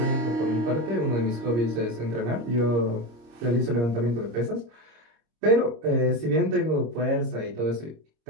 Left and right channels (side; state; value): left; late; 26 ms